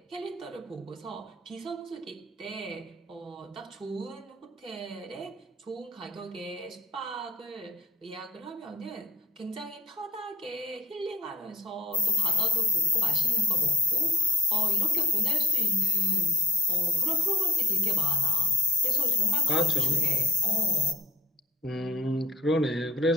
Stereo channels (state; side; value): normal; both; correlation 0.44